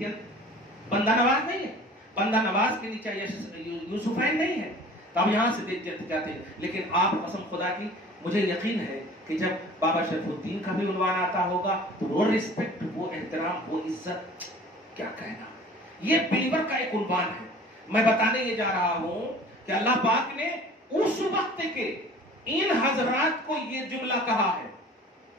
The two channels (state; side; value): normal; both; correlation 0.45